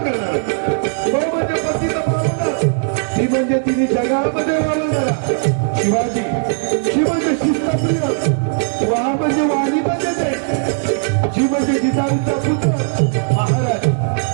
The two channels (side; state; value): left; silent; digital silence